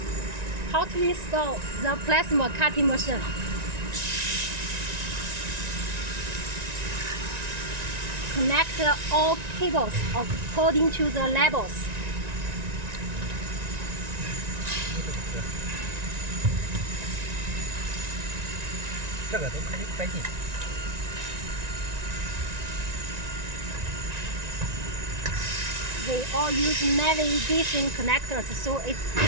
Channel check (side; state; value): left; late; 1.9 ms